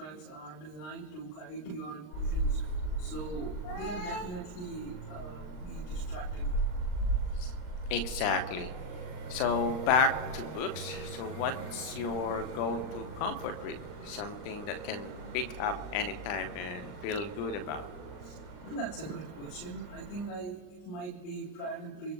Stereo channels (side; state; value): right; late; 39 ms